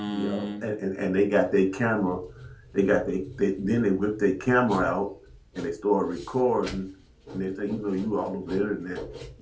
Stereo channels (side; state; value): both; identical; correlation 1.00